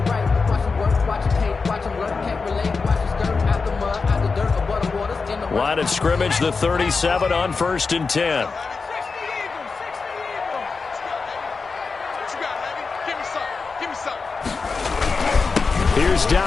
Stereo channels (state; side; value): quieter; right; 4.6 dB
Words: Line of scrimmage, the 37 on 1st and 10. Here's